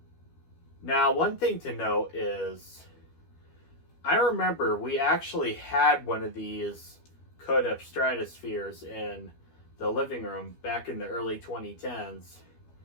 Now, one thing to note is, I remember we actually had one of these Codep Stratospheres in the living room back in the early 2010s.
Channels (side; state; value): right; late; 12 ms